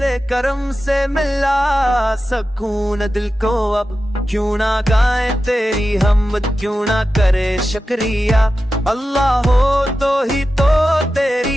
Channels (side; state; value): both; normal; correlation 0.92